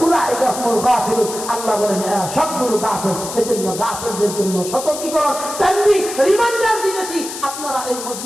উলাইকা হুমুল গাফিলুন, আল্লাহ বলেন সবগুলো গাফিল। এজন্য গাফিলদের জন্য সতর্কীকরণ, তানবীহ, রিমাইন্ডার দিতেছি, আপনারা এই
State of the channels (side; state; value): left; noise; hiss, 9 dB below the sound